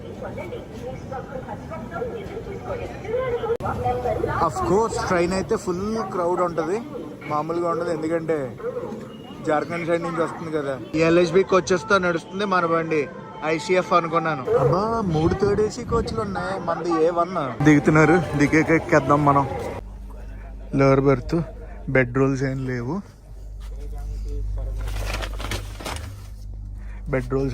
అఫ్ కోర్స్ ట్రైన్ అయితే ఫుల్ క్రౌడ్ ఉంటుంది, మామూలుగా ఉండదు. ఎందుకంటే జార్ఖండ్ సైడ్ నుంచి వస్తుంది కదా. ఎల్హెచ్బి కోచెస్ తో నడుస్తుంది మన బండి. ఐసీఎఫ్ అనుకున్నాను. అబ్బా 3 థర్డ్ ఏసీ కోచ్లు ఉన్నాయి, మనది A1. దిగుతున్నారు, దిగేకెక్కేద్దాం మనం. లోవర్ బెర్త్, బెడ్ రోల్స్ ఏం లేవు. బెడ్ రోల్స్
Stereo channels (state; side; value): identical; both; correlation 1.00